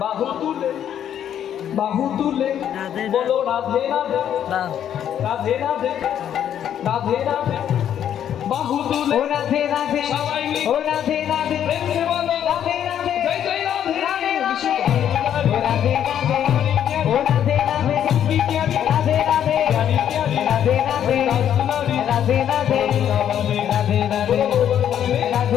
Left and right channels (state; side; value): quieter; right; 9.9 dB